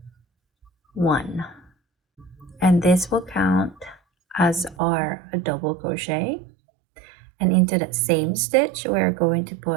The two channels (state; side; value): drops out; left; at 4.8 s